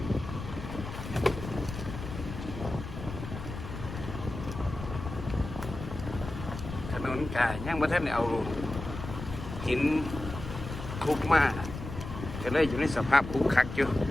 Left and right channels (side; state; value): left; noise; rumble, 9 dB below the sound